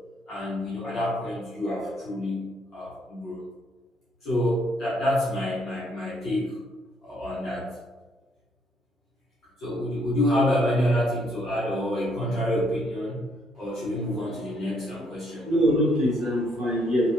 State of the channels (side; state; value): both; normal; correlation 0.70